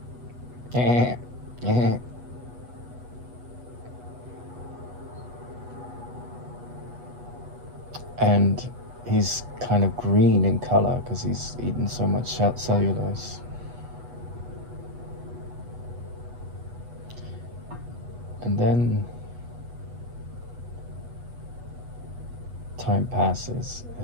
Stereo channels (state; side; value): late; left; 8.2 ms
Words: and he's kind of green in color because he's eaten so much cellulose. And then time passes,